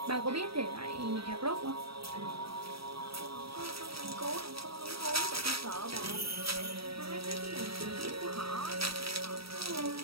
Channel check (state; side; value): late; left; 0.76 ms